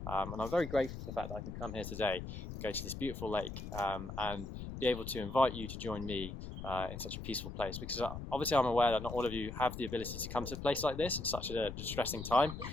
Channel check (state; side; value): noise; left; rumble, 8 dB below the sound